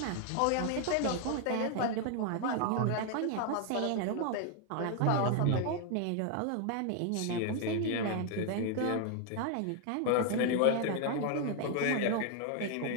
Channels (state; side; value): different; both; correlation 0.00